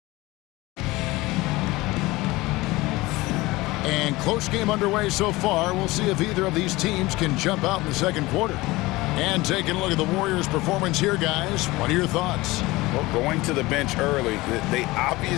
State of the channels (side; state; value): right; quieter; 20.4 dB